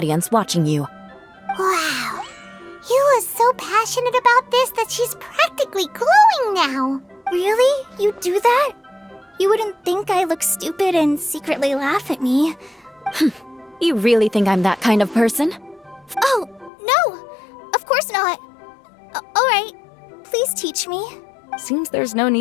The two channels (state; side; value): drops out; right; at 16.7 s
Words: watching you. Wow. You are so passionate about this that she's practically glowing now. Really? You do that? You wouldn't think I look stupid and secretly laugh at me. You really think I'm that kind of person? Oh, no! Of course not. Alright, please teach me. Seems there's no